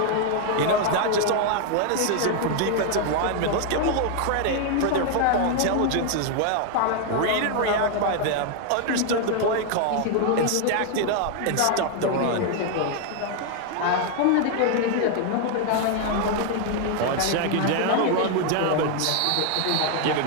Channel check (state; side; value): different; both; correlation 0.00